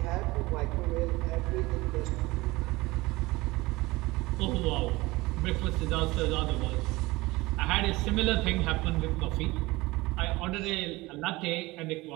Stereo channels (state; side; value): quieter; left; 20.9 dB